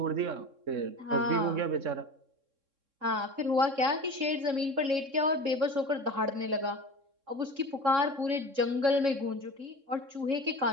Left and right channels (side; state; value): left; late; 3.6 ms